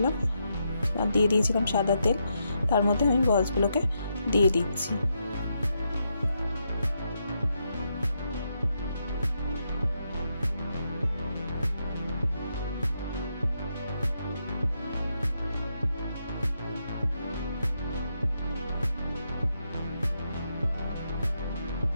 আর দিয়ে দিয়েছিলাম সাদা তেল। তার মধ্যে আমি বলসগুলোকে দিয়ে দিচ্ছি।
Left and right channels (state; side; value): inverted; both; correlation -0.81